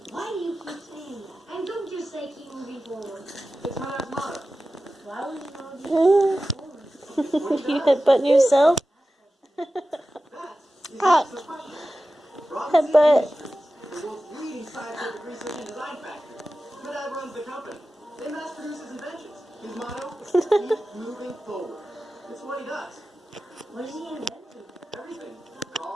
Why do you keep saying that? And don't just say keep moving forward. It's my last motto. Why would you not just keep moving forward? You headbutting yourself? Headbutt. The world's leading scientific research and design factory. My dad runs the company. They mass produce his inventions. His motto, keep moving forward. It's what he does. What is he inventing? Everything. The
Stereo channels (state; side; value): normal; both; correlation 0.94